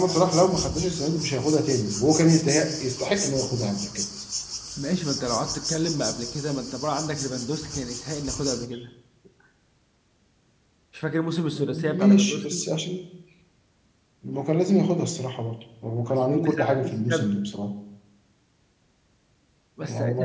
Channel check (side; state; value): both; identical; correlation 1.00